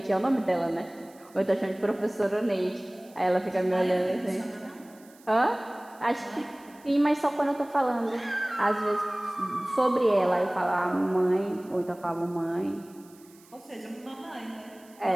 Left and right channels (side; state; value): right; noise; hiss, 27 dB below the sound